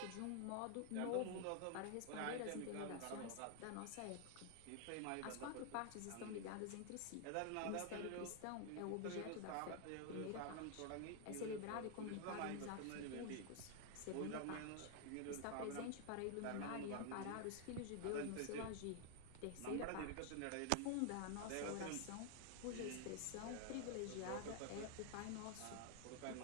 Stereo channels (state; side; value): different; both; correlation 0.00